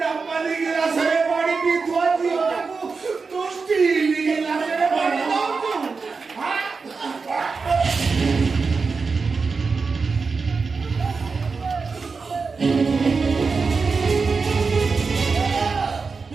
ଗିଲାସରେ ପାଣି ପିଇଥୁଆ ଝିଅଟାକୁ ତୁ ଷ୍ଟିଲ ଗିଲାସରେ ପାଣି ଦଉଛୁ?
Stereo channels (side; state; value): left; quieter; 4.7 dB